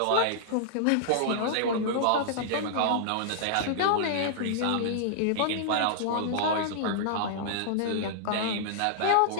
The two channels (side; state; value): both; different; correlation -0.01